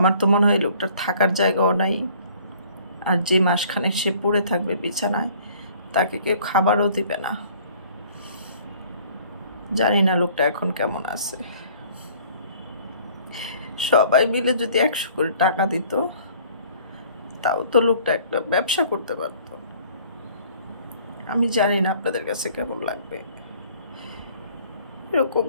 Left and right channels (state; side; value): inverted; both; correlation -0.54